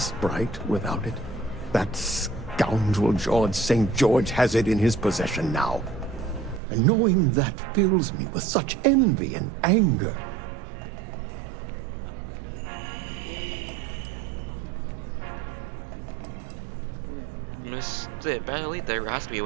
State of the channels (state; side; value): drops out; left; at 6.6 s